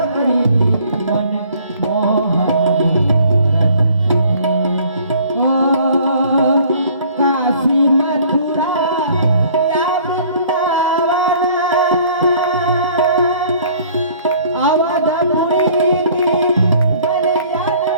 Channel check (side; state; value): both; inverted; correlation -0.55